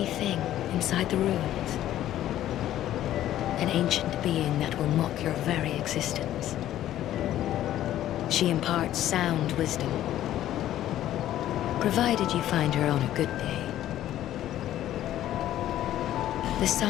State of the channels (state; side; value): quieter; right; 12.7 dB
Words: thing inside the ruins, an ancient being that will mock your very existence. She imparts sound wisdom, provided you find her on a good day. The